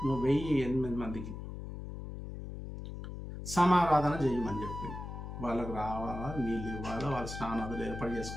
1008 మందికి సమారాధన చేయమని చెప్పింది. వాళ్ళకు రావాలా, నీళ్ళు ఇవ్వాలా, వాళ్ళ స్నానాలు ఏర్పాటు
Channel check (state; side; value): noise; left; hum, 8 dB below the sound